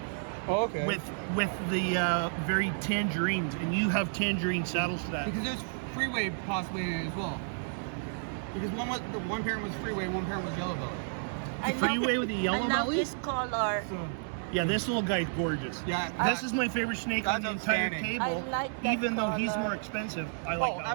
Oh, okay. with the very tangerines, and you have tangerine saddles to that. Because there's Freeway possibly in it as well. Because one parent was Freeway, one parent was Yellow Belly. I Freeway love- with the yellow I love belly? this color. So Yeah, this little guy's gorgeous. yeah, This is my favorite snake on the That's entire outstanding. table. I like that Even though he's color. more expensive, I like that one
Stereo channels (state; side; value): silent; left; digital silence